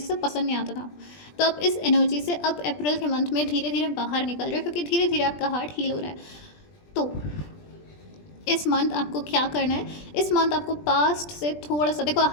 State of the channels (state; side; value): late; right; 20 ms